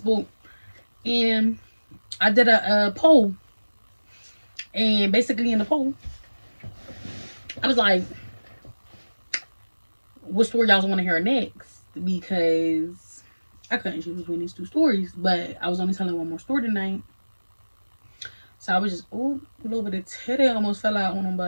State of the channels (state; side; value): inverted; both; correlation -1.00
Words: and I did a poll, and basically in the poll, I was like, "What story y'all want to hear next?" Because I couldn't choose between these two stories, but I was only telling one more story tonight, so I was just a little bit of titty almost fell out on them,